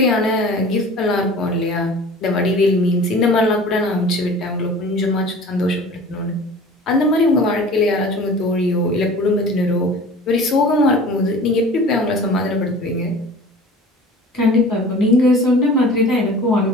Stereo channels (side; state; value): both; normal; correlation 0.42